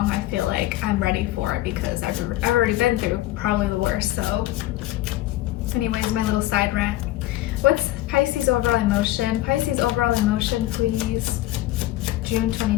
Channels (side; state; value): right; quieter; 16.2 dB